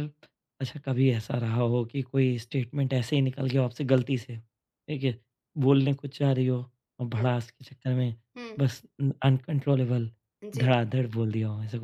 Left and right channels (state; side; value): identical; both; correlation 1.00